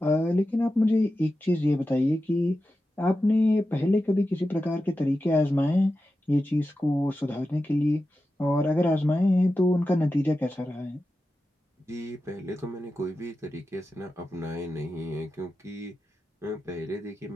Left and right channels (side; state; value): both; normal; correlation 0.92